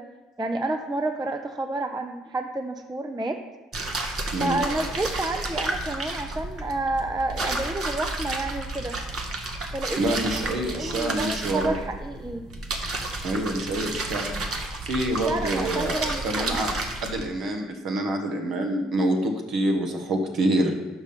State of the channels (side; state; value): both; normal; correlation 0.68